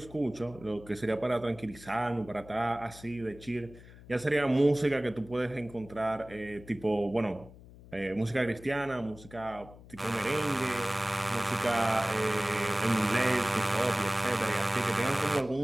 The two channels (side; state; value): left; noise; hum, 19 dB below the sound